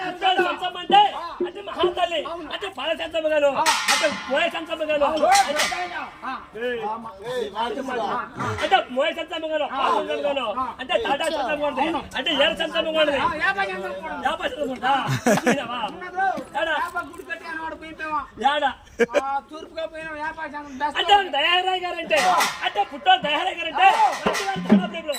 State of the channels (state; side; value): identical; both; correlation 1.00